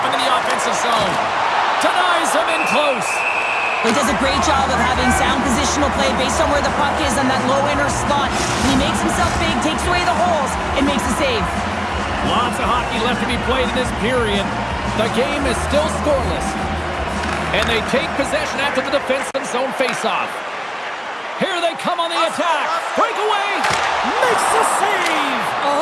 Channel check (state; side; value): identical; both; correlation 1.00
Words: in the offensive zone. Denies him in close. He does a great job of having sound positional play based on where the puck is on that low inner slot. When he makes himself big, takes away the holes, and makes a save. Lots of hockey left to be played in this period. The game is still scoreless. And they take possession after the defensive zone faceoff. Here they come on the attack. Breakaway. Makes the save.